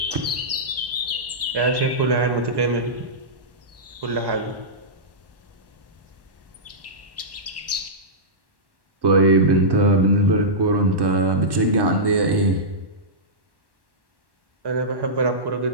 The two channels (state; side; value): late; left; 1.1 ms